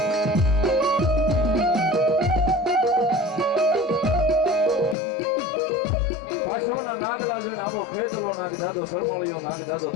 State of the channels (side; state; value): right; drops out; at 5.0 s